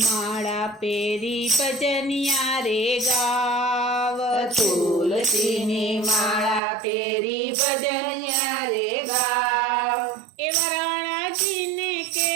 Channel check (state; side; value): drops out; left; at 6.6 s